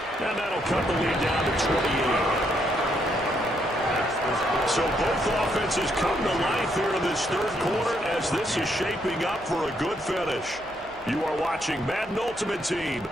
And that'll cut the lead down to 28. So both offenses come to life here in this third quarter as this is shaping up for a good finish. You are watching Madden Ultimate Team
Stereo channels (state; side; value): noise; right; hum, 25 dB below the sound